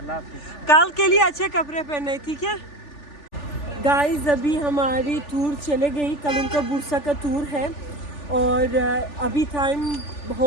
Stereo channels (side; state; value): right; late; 3.4 ms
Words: हाफिज। कल के लिए अच्छे कपड़े पहने, ठीक है गाइस। अभी हमारी टूर चले गई, कल उनका बुरसा का टूर है और अभी टाइम